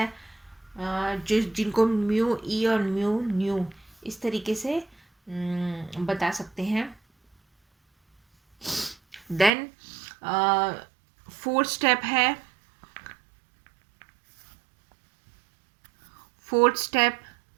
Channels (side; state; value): left; drops out; at 9.5 s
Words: जिनको म्यू ई और म्यू न्यू इस तरीके से बता सकते हैं। देन फोर्थ स्टेप